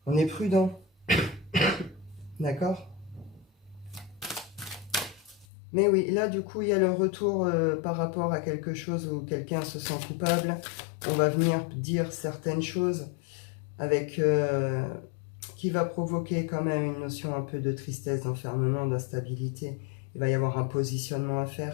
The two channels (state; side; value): drops out; right; at 5.5 s